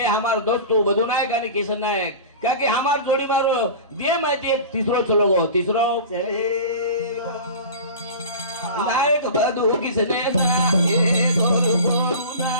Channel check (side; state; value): both; inverted; correlation -0.34